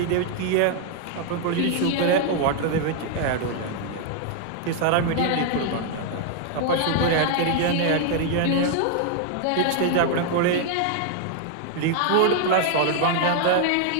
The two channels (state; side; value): different; both; correlation 0.00